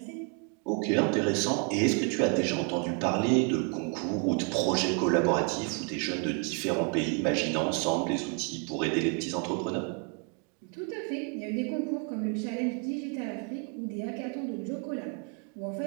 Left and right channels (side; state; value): left; quieter; 34.9 dB